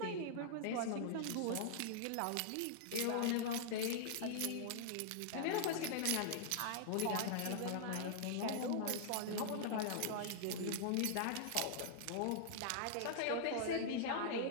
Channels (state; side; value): different; both; correlation -0.01